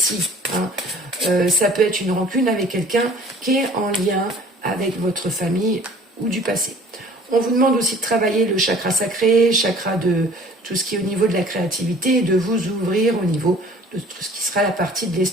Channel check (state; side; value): normal; both; correlation 0.50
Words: Hein. Ça peut être une rancune avec quelqu'un qui est en lien avec votre famille ou du passé. On vous demande aussi de travailler le chakra sacré, chakra de tout ce qui est au niveau de la créativité et de vous ouvrir au niveau de tout ce qui sera la partie de